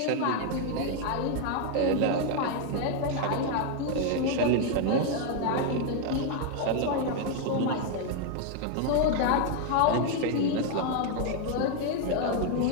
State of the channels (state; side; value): different; both; correlation 0.01